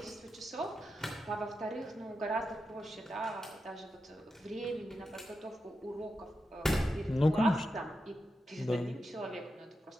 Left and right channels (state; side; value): normal; both; correlation 0.88